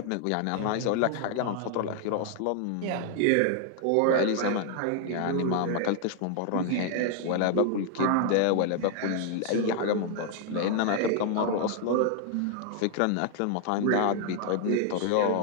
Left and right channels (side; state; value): both; different; correlation 0.00